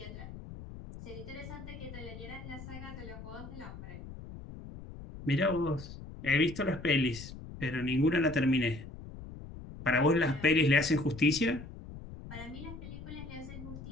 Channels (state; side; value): noise; left; rumble, 12 dB below the sound